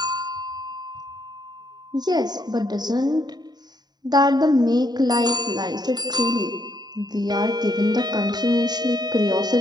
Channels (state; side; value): late; left; 0.20 ms